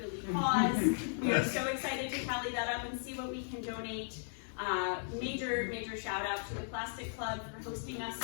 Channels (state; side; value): silent; right; digital silence